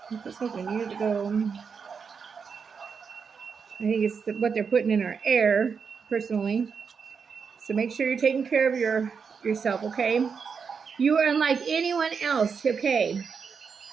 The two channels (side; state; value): left; quieter; 6.0 dB